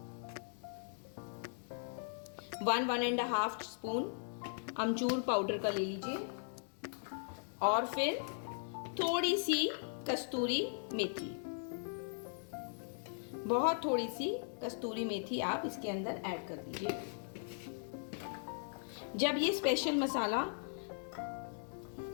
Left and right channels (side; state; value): right; silent; digital silence